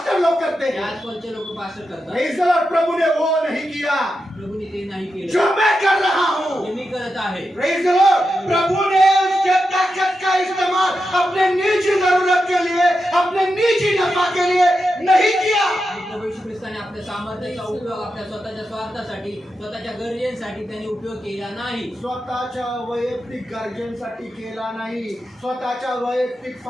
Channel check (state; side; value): normal; both; correlation 0.88